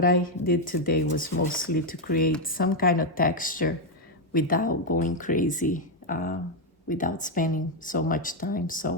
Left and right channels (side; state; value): both; normal; correlation 0.03